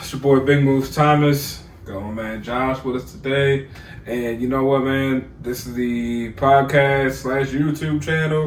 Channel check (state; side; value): identical; both; correlation 1.00